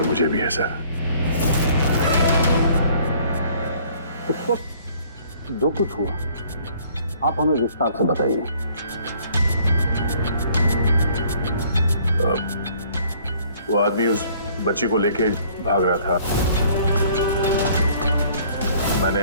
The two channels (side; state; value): both; inverted; correlation -0.58